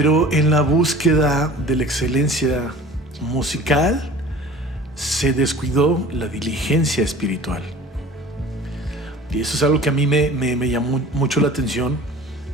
en la búsqueda de la excelencia musical se descuidó la diligencia espiritual. Y eso es algo que a mí me llamó mucho la atención,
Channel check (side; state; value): both; normal; correlation 0.43